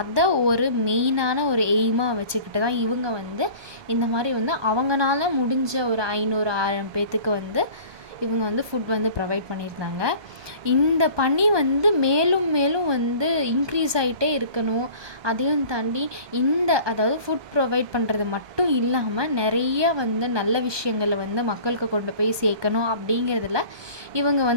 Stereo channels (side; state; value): left; late; 1.2 ms